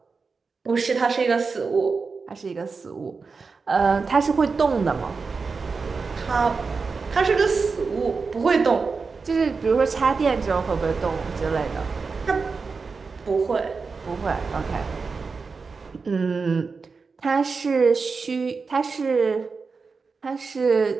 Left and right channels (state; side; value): quieter; left; 4.7 dB